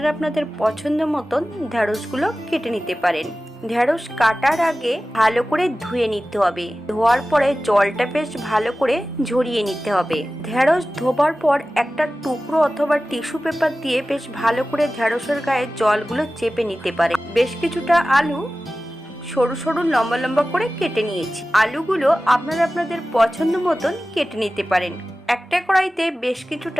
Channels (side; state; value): both; normal; correlation 0.96